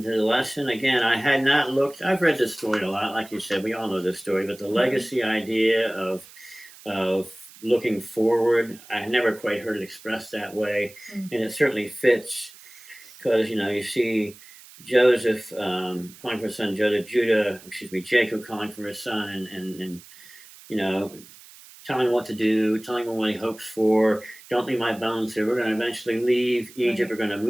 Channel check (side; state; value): right; noise; hiss, 21 dB below the sound